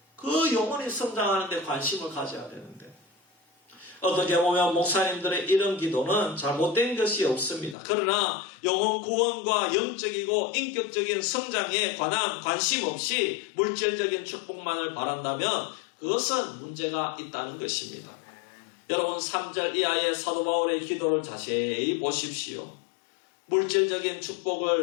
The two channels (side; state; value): right; drops out; at 7.8 s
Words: 그 영혼이 성장하는 데 관심을 가져야 되는데 어떻게 보면 목사님들의 이런 기도는 잘못된 것이 없습니다. 그러나 영혼 구원과 영적이고 인격적인 성장에 관한 관심 없이 물질적인 축복만을 바란다면 그것은 문제가 있다는 것입니다. 여러분 3절 이하의 사도 바울의 기도를 자세히 보십시오. 물질적인